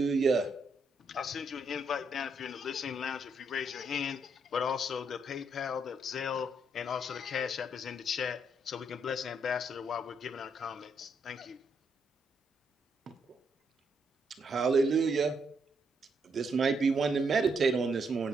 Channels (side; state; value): both; normal; correlation 0.76